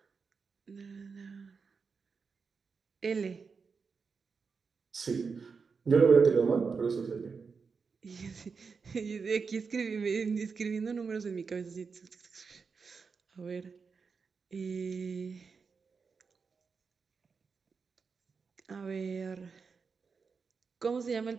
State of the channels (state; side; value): quieter; left; 5.2 dB